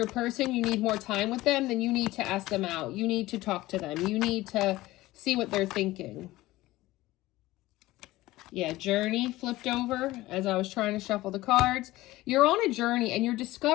person. You need more time with them. Then you need to ask them out. You need to talk to them. You need to see what they're thinking. Yeah, journey flipped over as I was trying to shuffle the cards. You're on a journey and you're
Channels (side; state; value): right; quieter; 17.8 dB